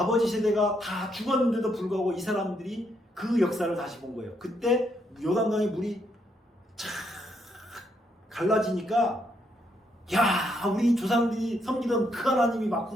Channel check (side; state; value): both; normal; correlation 0.75